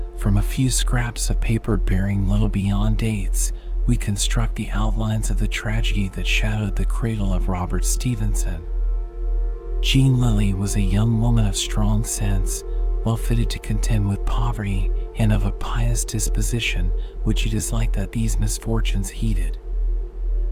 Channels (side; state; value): both; identical; correlation 1.00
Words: from a few scraps of paper bearing little beyond dates, we construct the outlines of the tragedy that shadowed the cradle of Robert Stevenson. Jean Lilly was a young woman of strong sense, well fitted to contend with poverty, and of a pious disposition, which it is like that these misfortunes heeded.